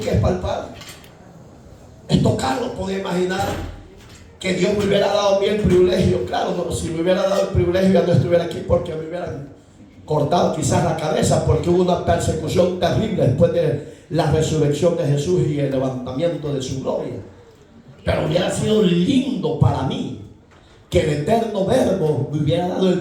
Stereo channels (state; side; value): identical; both; correlation 1.00